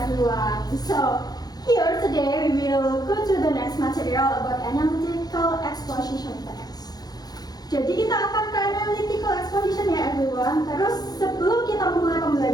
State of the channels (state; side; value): late; right; 0.19 ms